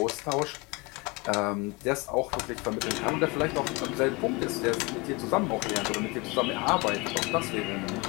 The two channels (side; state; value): right; quieter; 26.5 dB